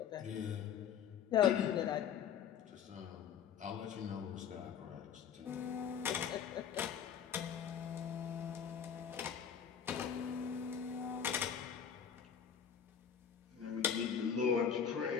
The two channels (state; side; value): quieter; right; 7.9 dB